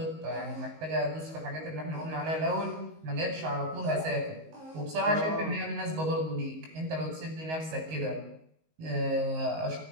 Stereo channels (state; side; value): late; left; 19 ms